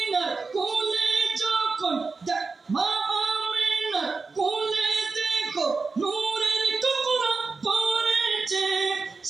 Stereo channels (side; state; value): left; quieter; 4.2 dB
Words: কোলে যখন, মা আমিনার কোলে দেখো নূরের টুকরা পড়েছে,